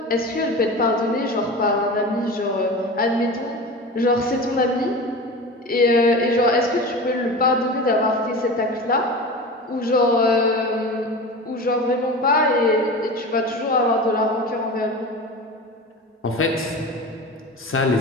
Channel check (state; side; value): normal; both; correlation 0.31